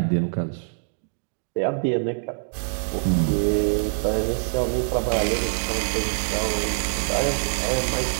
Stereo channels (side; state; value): left; silent; digital silence